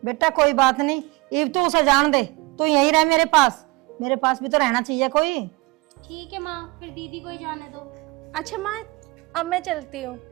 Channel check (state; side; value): quieter; left; 23.7 dB